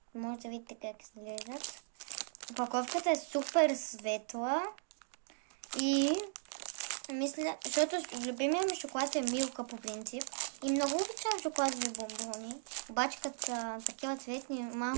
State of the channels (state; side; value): silent; left; digital silence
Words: може да видите как изглеждат. Опаковката е супер светла и мисля, защото любимия ми шоколад е Милка по принцип и много обичам шоколадови бомбони, обаче като са такива цветни